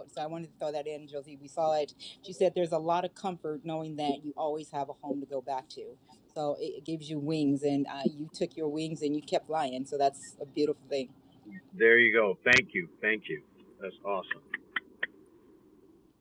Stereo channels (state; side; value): identical; both; correlation 1.00